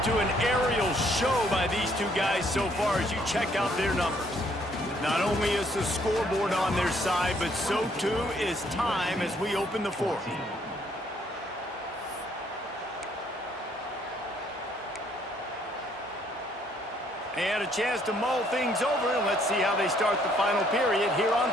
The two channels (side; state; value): both; normal; correlation 0.66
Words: to an aerial show by these two guys so far as you check out their numbers. Not only is the scoreboard on their side, but so too is time as we open the fourth. And a chance to mull things over, and let's see how they start the final period here on